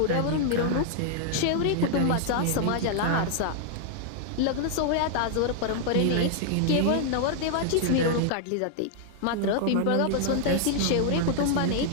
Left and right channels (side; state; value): both; different; correlation -0.01